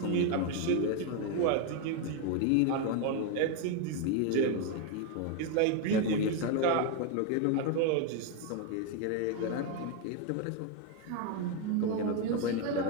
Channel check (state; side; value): different; both; correlation 0.01